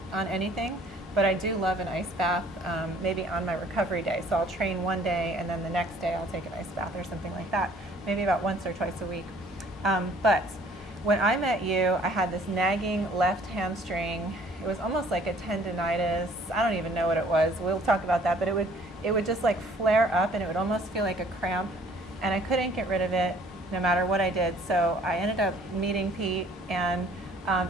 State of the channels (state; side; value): normal; both; correlation 0.57